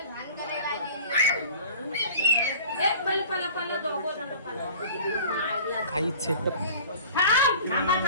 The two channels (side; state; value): both; inverted; correlation -0.43